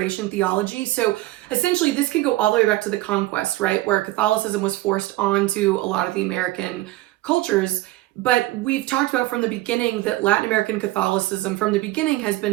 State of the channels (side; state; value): left; quieter; 17.6 dB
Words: theology. So essentially, this can go all the way back to the conquest, right, where Catholicism was forced onto a lot of the American cultures. But we've talked about from the beginning that Latin American Catholicism from the beginning has